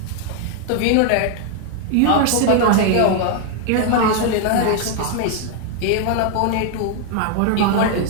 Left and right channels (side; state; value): both; different; correlation 0.00